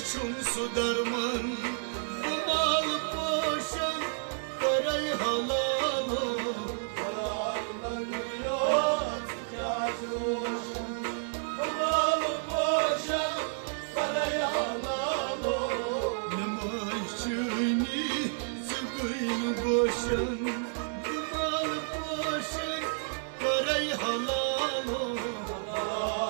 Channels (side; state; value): left; silent; digital silence